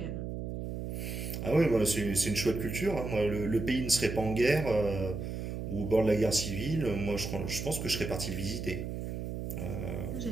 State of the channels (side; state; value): right; noise; hum, 5 dB below the sound